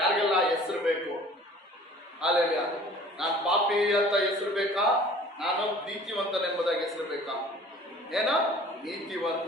ಹೆಸರು ಬೇಕು? ಅಲ್ಲೆಲ್ಲ ನಾನು ಪಾಪಿ ಅಂತ ಹೆಸರು ಬೇಕಾ? ನಾನು ನೀತಿವಂತನೆಂಬುದಾಗಿ ಹೆಸರು ಬೇಕಾ? ಏನೋ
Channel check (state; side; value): normal; both; correlation 0.49